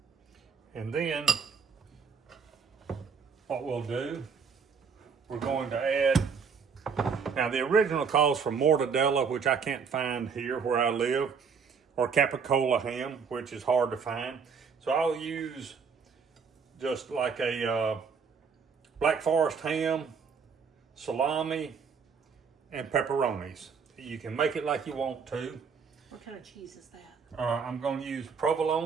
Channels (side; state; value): left; quieter; 5.9 dB